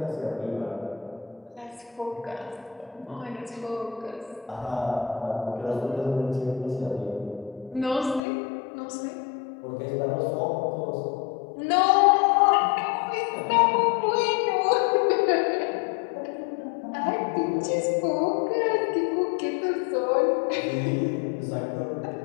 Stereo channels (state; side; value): drops out; right; at 8.2 s